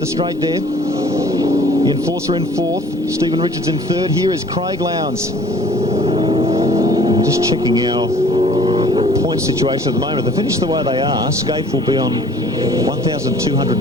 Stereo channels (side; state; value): both; normal; correlation 0.52